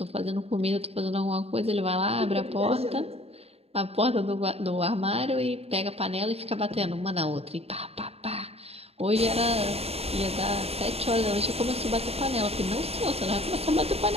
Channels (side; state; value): left; late; 0.29 ms